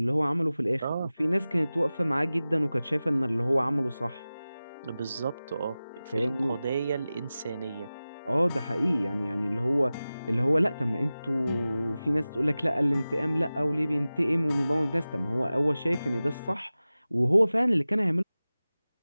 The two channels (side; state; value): both; inverted; correlation -0.97